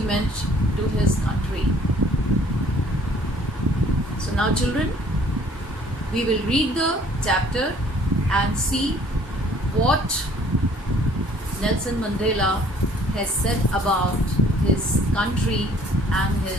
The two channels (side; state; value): both; normal; correlation 0.57